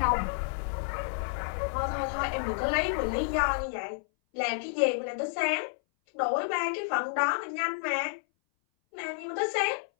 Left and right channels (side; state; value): right; silent; 58 dB below the other